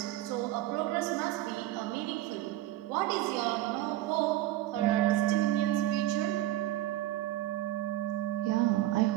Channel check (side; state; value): left; quieter; 14.9 dB